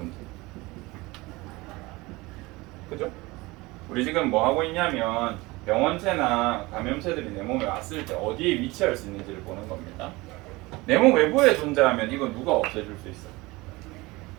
그죠? 우리 지금 뭐 하고 있냐면 병원체나 감염체들이 내 몸에 왔을 때 어디에 위치할 수 있는지를 보는 겁니다. 내 몸 외부에 존재하면 이건 누가 없애줄 수 있어?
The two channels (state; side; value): quieter; left; 22.2 dB